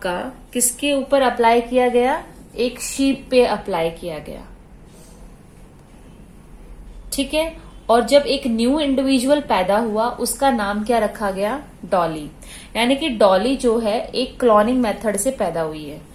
किसके ऊपर अप्लाई किया गया? एक शीप पे अप्लाई किया गया, ठीक है. और जब एक न्यू इंडिविजुअल पैदा हुआ उसका नाम क्या रखा गया? डॉली. यानी कि डॉली जो है एक क्लोनिंग मेथड से पैदा हुई है,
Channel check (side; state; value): both; identical; correlation 1.00